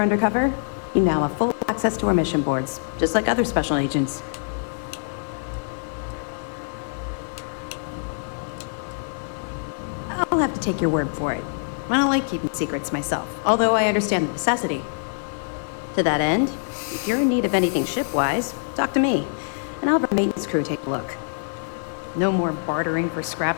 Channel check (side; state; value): right; silent; digital silence